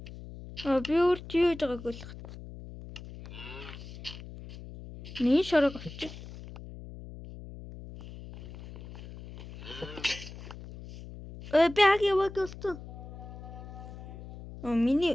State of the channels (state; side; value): noise; left; hum, 13 dB below the sound